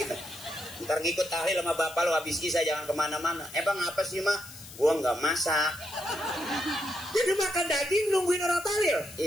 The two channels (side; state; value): left; noise; hiss, 16 dB below the sound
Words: Ntar ngikut tahlil sama bapak lo, habis isya jangan kemana-mana. Bang apa sih mak? Gue nggak masak. Jadi makan daging nungguin orang tahlil?